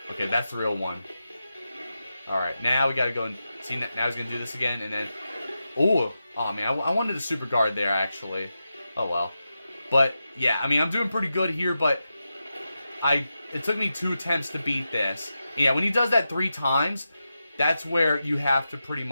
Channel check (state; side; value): inverted; both; correlation -0.90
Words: Okay, that's the real one. Alright, now we gotta go and... See, now he's gonna do this again, and then... Oh man, I wanted a super guard there, actually. Oh well. But, yeah, I mean, I'm doing pretty good here, but... It took me 2 attempts to beat this. Yeah, when he does that 3 times, that's where you have to pretty